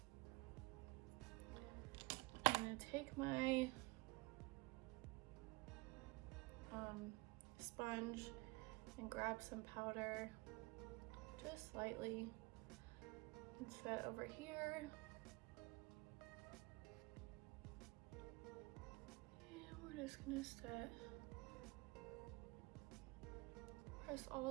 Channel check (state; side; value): quieter; left; 24.8 dB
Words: I'm gonna take my sponge and grab some powder, just slightly, and set over here. Just gonna set, press